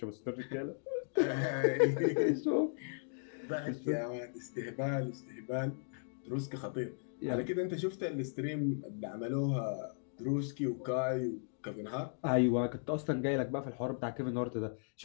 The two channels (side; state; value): right; silent; digital silence